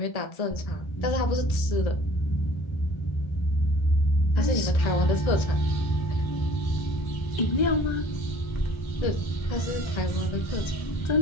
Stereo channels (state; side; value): late; right; 1.3 ms